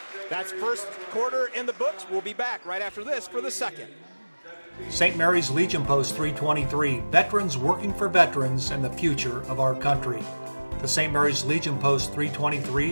That's first quarter in the books. We'll be back right after this for the second. St. Mary's Legion Post 323, veterans working for veterans and the future of our country. The St. Mary's Legion Post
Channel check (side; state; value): both; inverted; correlation -1.00